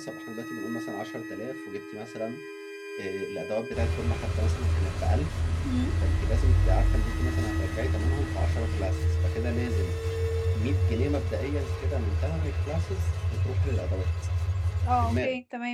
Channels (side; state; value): both; identical; correlation 1.00